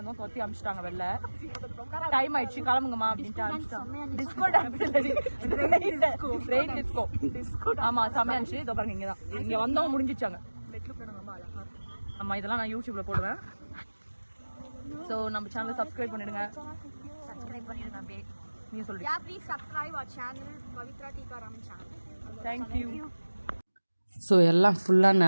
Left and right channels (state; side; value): inverted; both; correlation -1.00